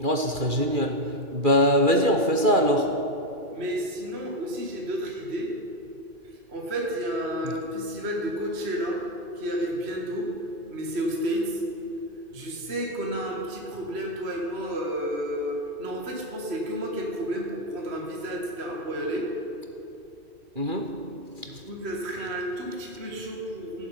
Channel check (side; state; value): left; late; 2.4 ms